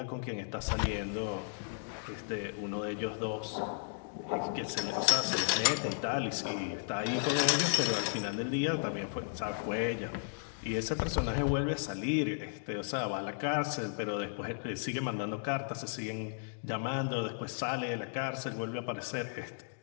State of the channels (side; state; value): right; silent; digital silence